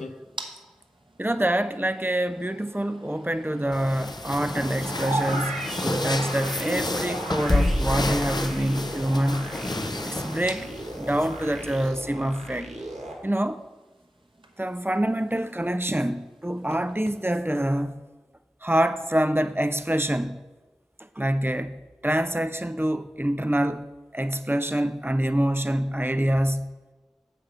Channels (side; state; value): both; normal; correlation 0.91